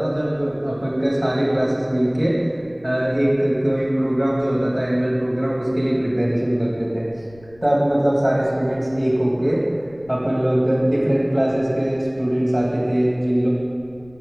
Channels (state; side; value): noise; left; rumble, 25 dB below the sound